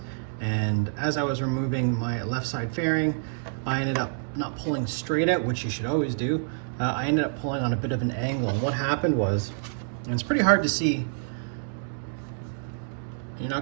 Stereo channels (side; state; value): left; silent; digital silence